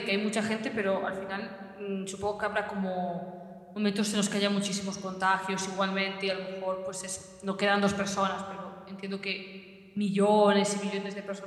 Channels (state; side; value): identical; both; correlation 1.00